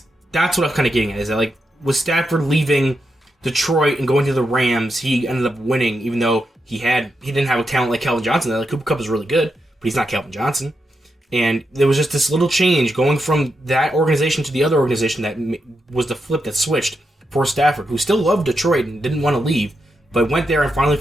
that's what I'm kind of getting at. Is that like with Stafford leaving Detroit and going to the Rams, he ended up winning, even though he didn't have a talent like Calvin Johnson. Like Cooper Kupp is really good, but he's not Calvin Johnson. And there was just this little change going from that organization to the other organization that was the flip that switched for Stafford, who still loved Detroit and didn't want to leave, but went there and finally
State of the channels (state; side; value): normal; both; correlation 0.85